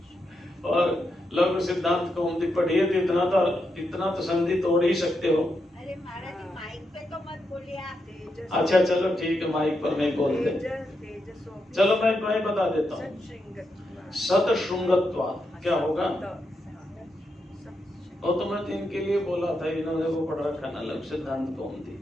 और लघु सिद्धांत कौमुदी पढ़िए तो इतना तो संधि तोड़ ही सकते हो। अरे महाराज जी माइक पे तो मत बोलिए आप। अच्छा चलो ठीक है, माइक पर मैं बोल दे। चलो मैं बता देता हूँ। सतशृंगत्वात् क्या होगा? वो तो मैं इनके लिए बोला था, इन्होंने वो पढ़ रखा ना लघु सिद्धांत कौमुदी।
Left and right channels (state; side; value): normal; both; correlation 0.84